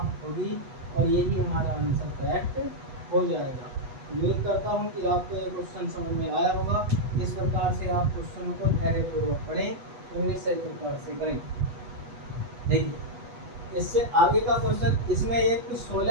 होगी, और यही हमारा आंसर करेक्ट हो जाएगा। उम्मीद करता हूँ कि आपको ये क्वेश्चन समझ में आया होगा। इस प्रकार से आप क्वेश्चनों को धैर्यपूर्वक पढ़ें और निश्चय प्रकार से करें। देखिए इससे आगे का क्वेश्चन, इसमें एक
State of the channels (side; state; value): left; late; 8.1 ms